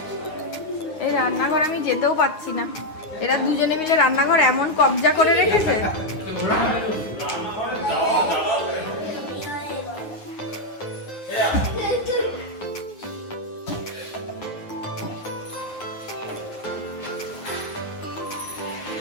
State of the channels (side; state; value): right; late; 9.5 ms